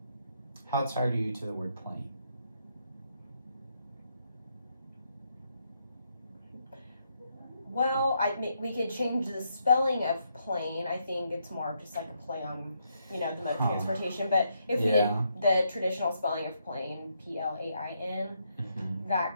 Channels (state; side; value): inverted; both; correlation -0.78